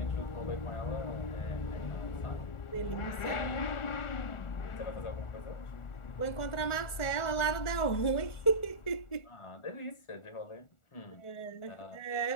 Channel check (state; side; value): late; right; 1.4 ms